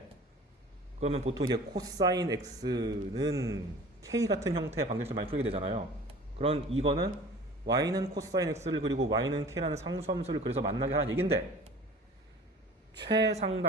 그러면 보통 이제 코사인 x는 k 같은 형태의 방정식을 많이 풀게 되잖아요. 그런 이거는 y는 코사인 x를 그리고 y는 k라는 상수함수를 그래서 만나게 하는 얘긴데,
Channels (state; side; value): normal; both; correlation 0.43